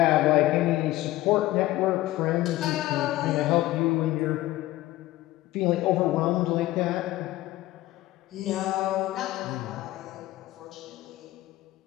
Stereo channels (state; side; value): quieter; right; 16.6 dB